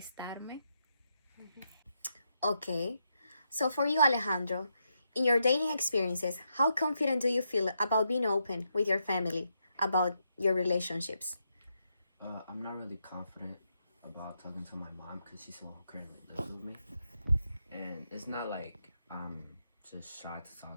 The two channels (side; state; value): both; inverted; correlation -0.82